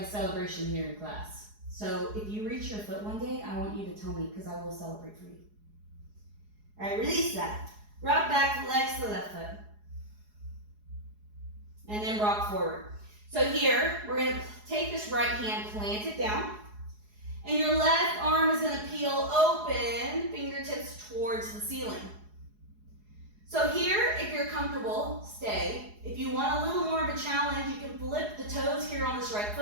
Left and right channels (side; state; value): left; late; 4.8 ms